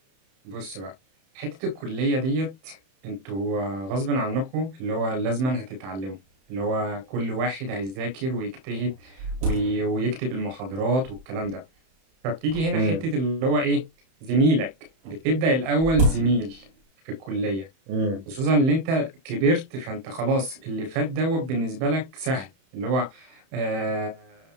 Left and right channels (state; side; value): late; left; 31 ms